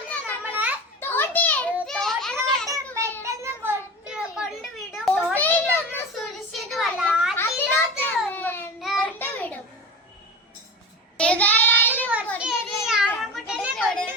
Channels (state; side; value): normal; both; correlation 0.30